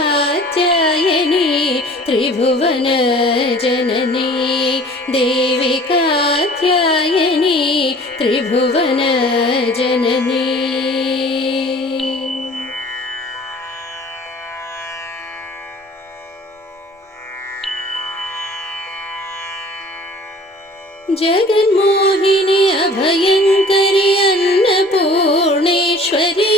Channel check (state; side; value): normal; both; correlation 0.48